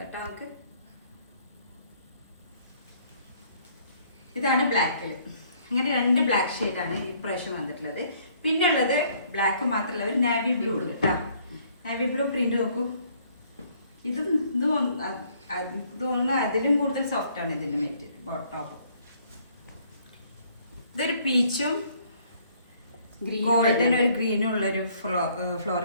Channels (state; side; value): inverted; both; correlation -0.63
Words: കേട്ടോ നമുക്ക്. ഇതാണ് ബ്ലാക്കിൽ. അങ്ങനെ രണ്ട് ബ്ലാക്ക് ഷെയ്ഡാണ് ഈ പ്രാവശ്യം വന്നിട്ടുള്ളത്. പിന്നെ ഉള്ളത് ബ്ലാക്ക് മാത്രമല്ല ഒരു നാവി ബ്ലൂ ഉണ്ട് കേട്ടോ. നാവി ബ്ലൂ പ്രിന്റ് നോക്കൂ. ഇതും തോന്നുന്നു അതിലും കൂടുതൽ സോഫ്റ്റ് ആണ് ഇതിന്റെ മെറ്റീരിയൽ ടോപ്പ്. ഇതൊരു പീച്ചും ഗോൾഡൻ ഒരു ഗ്രീനും ഉള്ളൊരു